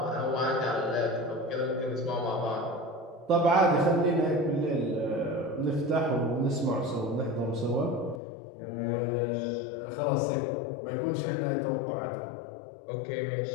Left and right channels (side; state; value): right; drops out; at 8.2 s